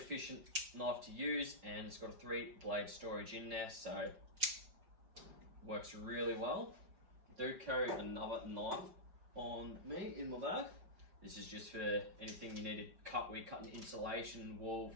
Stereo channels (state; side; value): late; left; 5.6 ms